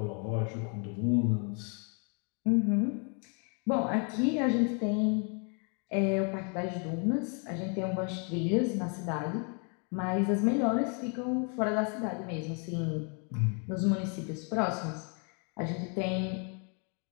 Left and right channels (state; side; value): quieter; right; 38.7 dB